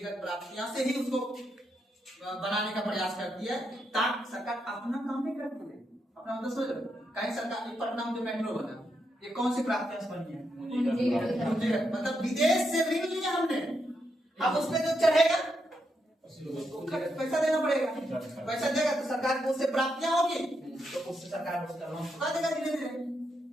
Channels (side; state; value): both; normal; correlation 0.82